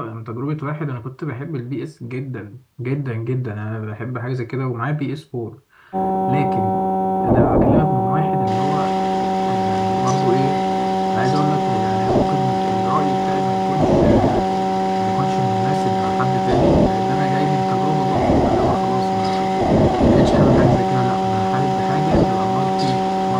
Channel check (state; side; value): identical; both; correlation 1.00